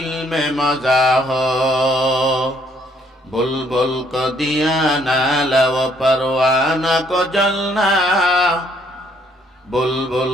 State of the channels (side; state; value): both; normal; correlation 0.67